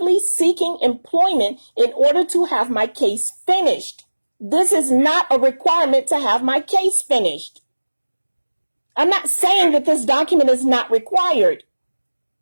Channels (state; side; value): inverted; both; correlation -1.00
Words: seeking employment in order to have my case finished. This is not a requirement to have my case finished. I'm not saying that this document is not required.